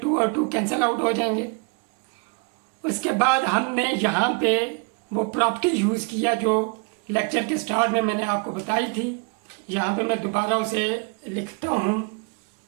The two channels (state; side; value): quieter; left; 33.6 dB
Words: और 2 कैंसिल आउट हो जाएंगे। उसके बाद हमने यहाँ पे वो प्रॉपर्टी यूज़ किया जो लेक्चर के स्टार्ट में मैंने आपको बताई थी। यहाँ पे मैं दोबारा उसे लिखता हूँ